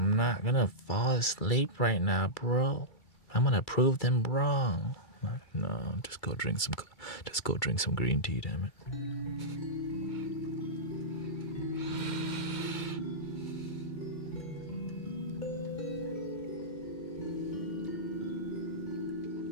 not gonna fall asleep right now, bro. I'm gonna prove them wrong. No, just go drink some green tea, damn it.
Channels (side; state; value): right; late; 2.3 ms